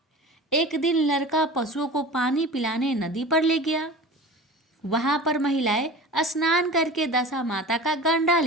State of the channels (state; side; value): normal; both; correlation 0.36